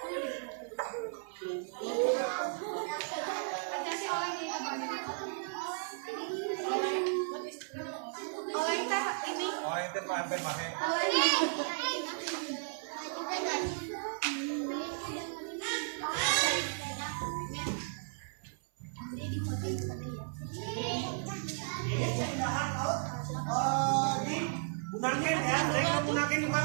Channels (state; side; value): silent; left; 55 dB below the other